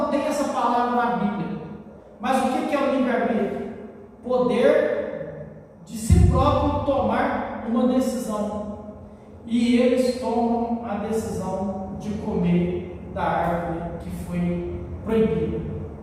essa palavra na Bíblia, mas o que é o livre-arbítrio? Poder de si próprio tomar uma decisão, e eles tomam a decisão de comer da árvore que foi proibida,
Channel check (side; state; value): both; identical; correlation 1.00